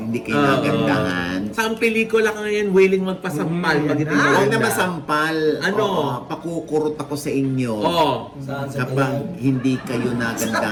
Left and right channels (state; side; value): identical; both; correlation 1.00